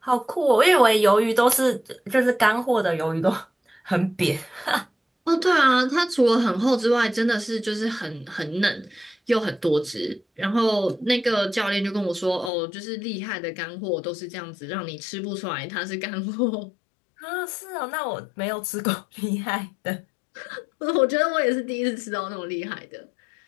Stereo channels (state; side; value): drops out; right; at 12.5 s